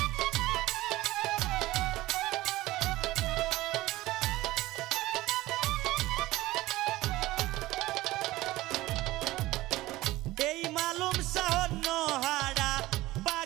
এই মালুম শাহর নোহারা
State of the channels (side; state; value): left; quieter; 17.8 dB